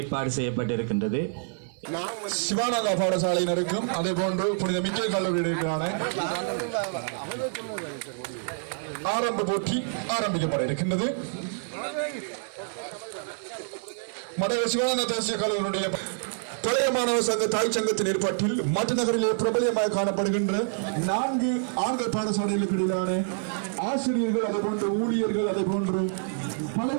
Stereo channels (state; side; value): silent; left; 60 dB below the other